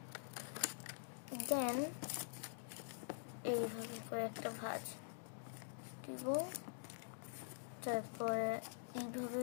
দেন এইভাবে করে একটা ভাঁজ দিব, তারপরে এইভাবে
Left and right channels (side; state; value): right; silent; digital silence